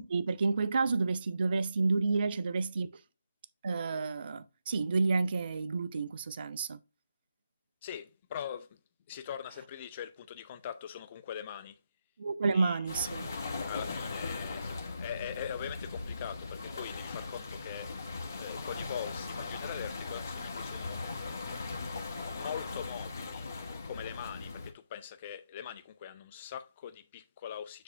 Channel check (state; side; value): inverted; both; correlation -0.84